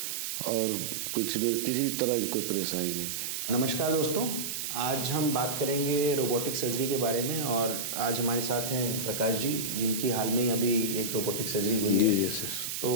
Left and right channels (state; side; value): noise; right; hiss, 4 dB below the sound